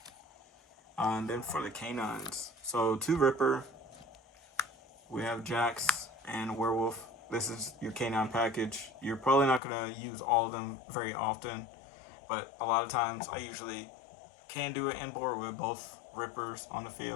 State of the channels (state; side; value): drops out; right; at 9.6 s